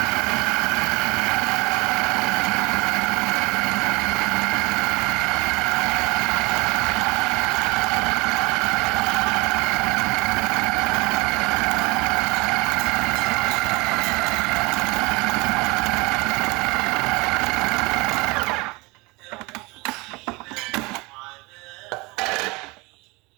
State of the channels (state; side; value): quieter; left; 25.2 dB